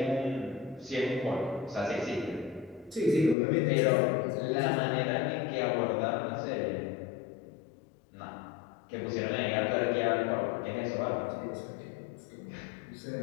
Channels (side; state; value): right; drops out; at 3.4 s